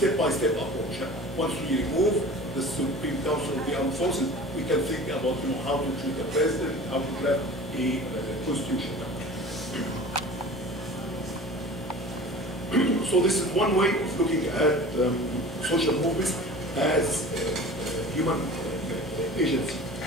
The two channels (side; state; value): both; normal; correlation 0.40